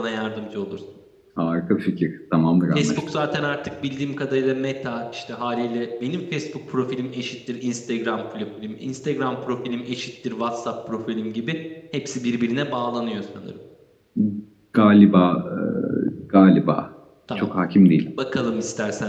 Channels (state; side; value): identical; both; correlation 1.00